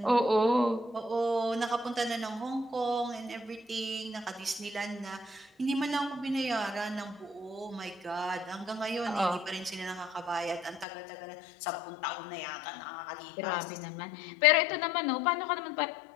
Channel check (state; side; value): drops out; right; at 10.9 s